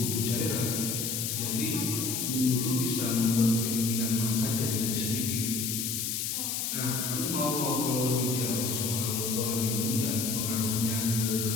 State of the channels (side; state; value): left; noise; hiss, 1 dB below the sound